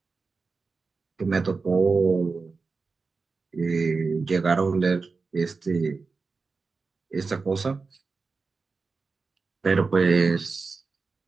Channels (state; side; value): quieter; left; 4.4 dB